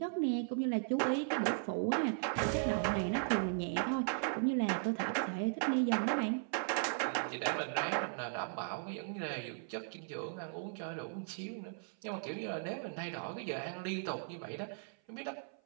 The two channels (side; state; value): left; silent; 53 dB below the other